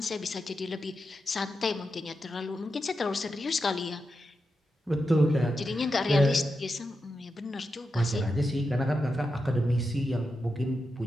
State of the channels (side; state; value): both; normal; correlation 0.88